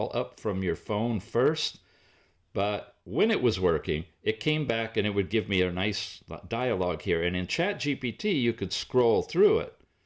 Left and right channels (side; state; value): both; identical; correlation 1.00